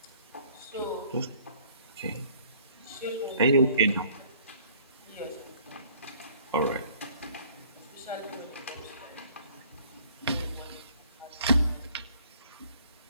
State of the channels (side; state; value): both; inverted; correlation -0.57